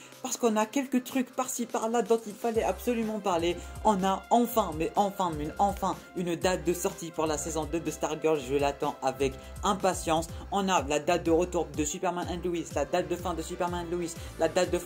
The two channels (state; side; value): identical; both; correlation 1.00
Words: parce qu'on a quelques trucs par-ci par-là dont il fallait absolument parler. On a enfin une date de sortie pour la saison 2 de Stargirl, je l'attends avec impatience. On a la date de retour de Superman and Lois, la date de fin de Superman and Lois, la date de